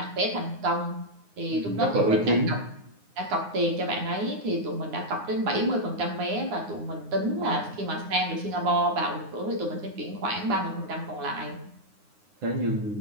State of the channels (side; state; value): left; late; 9.6 ms